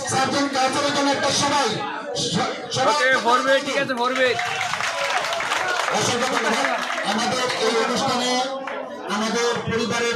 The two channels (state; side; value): identical; both; correlation 1.00